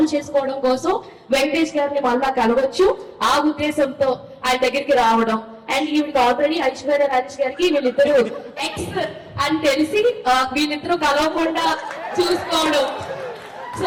చేసుకోవడం కోసం వెంకటేష్ గారిని మళ్ళా కలవచ్చు. ఆ ఉద్దేశంతో ఆయన దగ్గరికి రావడం అండ్ ఈవిడికి ఆల్రెడీ ఐశ్వర్య రాజేష్ గారికి వీళ్ళిద్దరు ఎక్స్ అని తెలిసి వీళ్ళిద్దరూ కలవకుండా చూసుకోవడం. సో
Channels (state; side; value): identical; both; correlation 1.00